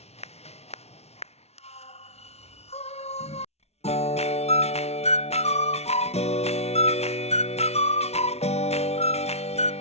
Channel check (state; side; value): late; right; 0.31 ms